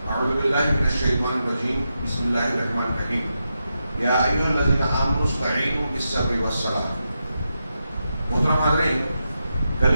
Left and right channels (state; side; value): inverted; both; correlation -0.87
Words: أعوذ بالله من الشيطان الرجيم. بسم الله الرحمن الرحيم. يا أيها الذين آمنوا استعينوا بالصبر والصلاة. محترم حاضرین، کل